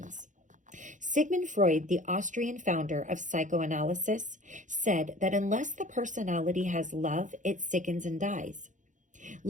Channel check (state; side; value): late; left; 0.36 ms